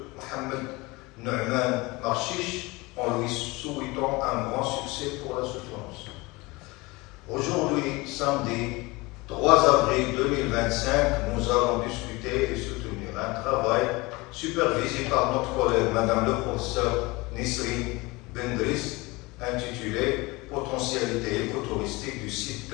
Mohamed Nouman Marchiche, en lui souhaitant un grand succès pour la soutenance. Aujourd'hui, samedi 3 avril 2025, nous allons discuter et soutenir un travail supervisé par notre collègue Madame le professeur Nisrine Bendriss, intitulé Potentialité écotouristique du site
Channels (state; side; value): quieter; right; 23.4 dB